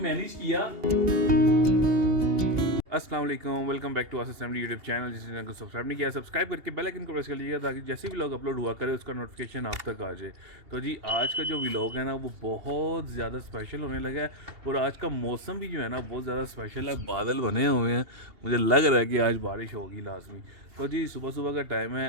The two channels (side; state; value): left; late; 2.8 ms